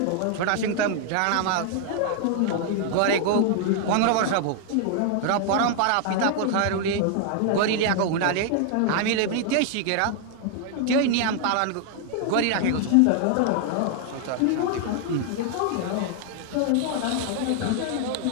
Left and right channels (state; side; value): different; both; correlation 0.00